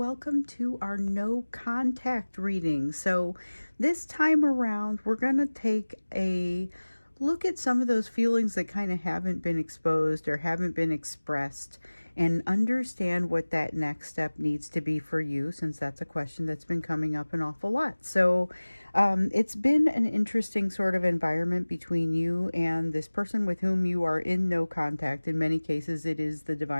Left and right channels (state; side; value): inverted; both; correlation -1.00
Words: to our no contact reading. So, this time around, we're going to take a look at some of those feelings that kind of haven't been exposed or haven't been expressed and understand what that next step needs to be for you, since that's a question that's been coming up an awful lot. So, it's been an interesting sort of environment between you and this person with whom you are in no contact. In many cases, it is the